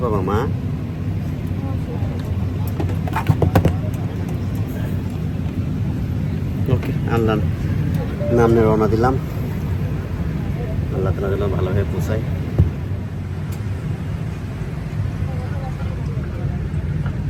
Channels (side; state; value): both; identical; correlation 1.00